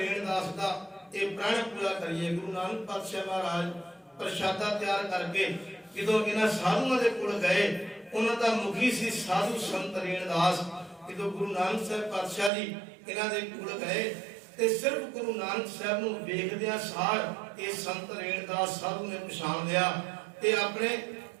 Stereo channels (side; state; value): left; drops out; at 12.5 s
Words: ਦਾ ਇਹ ਪ੍ਰਣ ਪੂਰਾ ਕਰੀਏ। ਗੁਰੂ ਨਾਨਕ ਪਾਤਸ਼ਾਹ ਮਹਾਰਾਜ ਪ੍ਰਸ਼ਾਦਾ ਤਿਆਰ ਕਰਕੇ ਜਦੋਂ ਇਹਨਾਂ ਸਾਧੂਆਂ ਦੇ ਕੋਲ ਗਏ, ਉਹਨਾਂ ਦਾ ਮੁਖੀ ਸੀ ਸਾਧੂ ਸੰਤ ਰੇਣਦਾਸ। ਜਦੋਂ ਗੁਰੂ ਨਾਨਕ ਸਾਹਿਬ ਪਾਤਸ਼ਾਹ ਜੀ ਇਹਨਾਂ ਦੇ ਕੋਲ ਗਏ ਤੇ ਸਿਰਫ ਗੁਰੂ ਨਾਨਕ ਸਾਹਿਬ ਨੂੰ ਵੇਖਦਿਆਂ ਸਾਰ ਇਹ ਸੰਤ ਰੇਣਦਾਸ ਸਾਧੂ ਨੇ ਪਛਾਣ ਲਿਆ ਤੇ ਆਪਣੇ